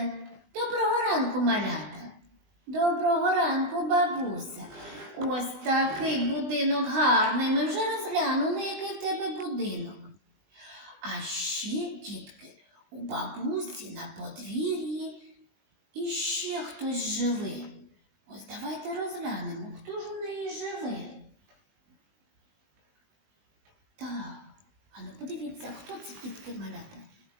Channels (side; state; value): left; late; 20 ms